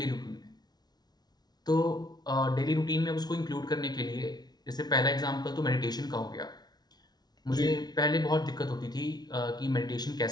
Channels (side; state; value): right; late; 0.19 ms